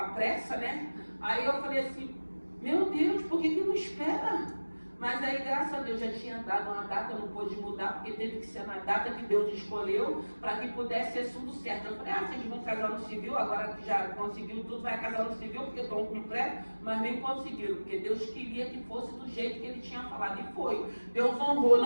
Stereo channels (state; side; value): inverted; both; correlation -1.00